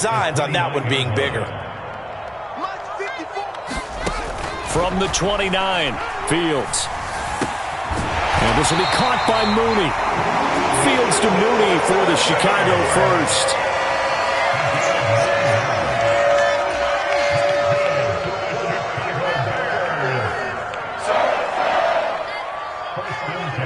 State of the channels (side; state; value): both; identical; correlation 1.00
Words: on that one being bigger. From the 29, Fields. And this will be caught by Mooney. Fields to Mooney for the Chicago first.